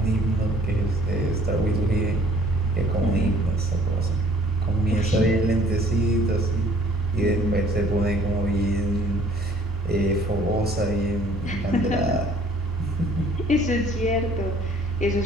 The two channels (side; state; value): both; normal; correlation 0.57